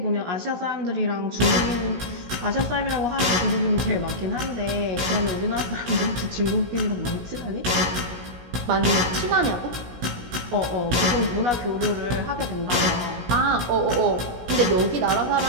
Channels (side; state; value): left; late; 17 ms